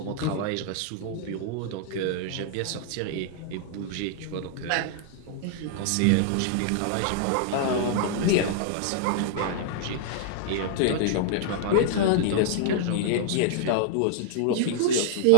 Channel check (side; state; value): both; different; correlation -0.01